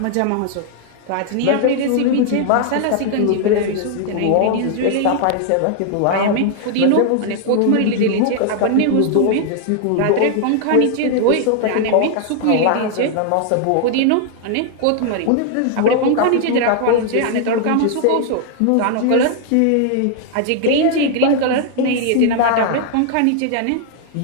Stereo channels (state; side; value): different; both; correlation 0.00